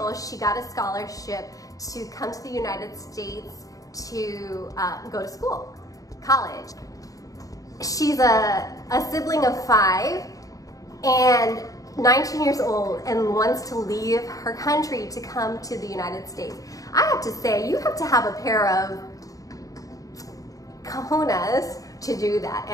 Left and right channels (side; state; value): right; late; 0.17 ms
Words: She got a scholarship to come to the United States to go to school, college. She's a sibling of 5 and 19 years old and wants to leave her country to come to the United States. I have to say, you have to have a pair of cojones to do that.